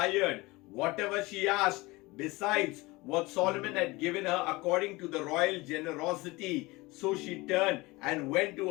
whatever she asked, besides what Solomon had given her according to the royal generosity. So she turned and went to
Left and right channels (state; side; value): quieter; right; 22.3 dB